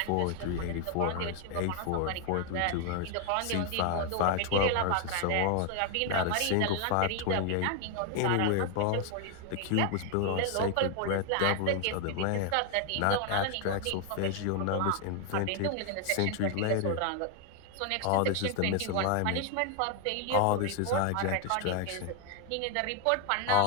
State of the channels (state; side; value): different; both; correlation 0.01